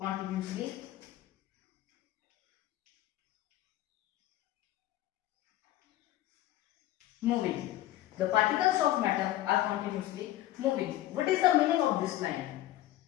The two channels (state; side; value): quieter; right; 14.7 dB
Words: moving. The particles of matter are continuously moving. What is the meaning of this line?